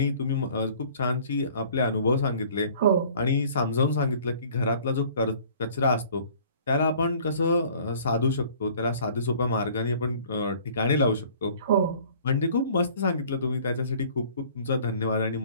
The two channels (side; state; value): both; inverted; correlation -0.52